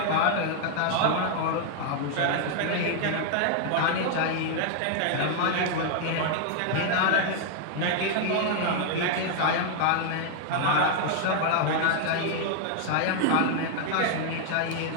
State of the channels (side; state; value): both; different; correlation 0.00